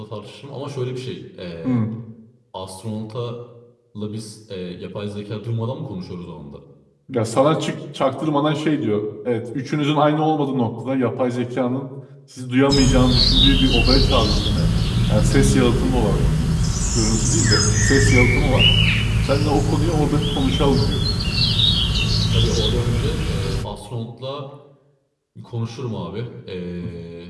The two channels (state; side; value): identical; both; correlation 1.00